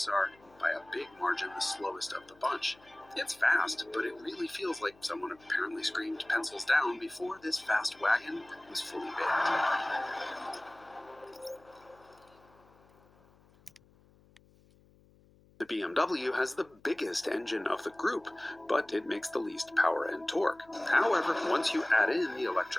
are, by a big margin, the slowest of the bunch. It's fast, but it really feels like someone apparently screamed pencils down before this fast wagon was fully baked. The BMW has the biggest engine of the group, but it makes the least power and torque. However, once you add in the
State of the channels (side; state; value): left; noise; hum, 29 dB below the sound